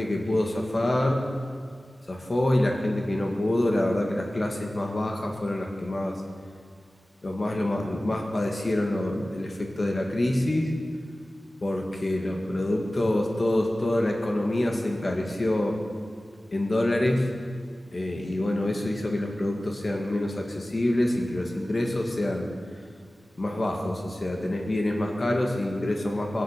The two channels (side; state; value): both; normal; correlation 0.96